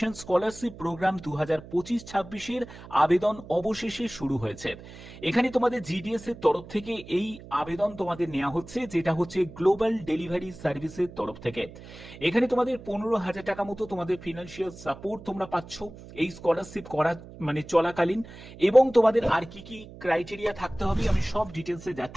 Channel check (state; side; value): noise; right; hum, 16 dB below the sound